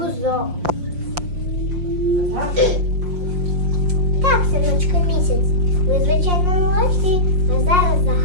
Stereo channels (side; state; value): left; late; 5.6 ms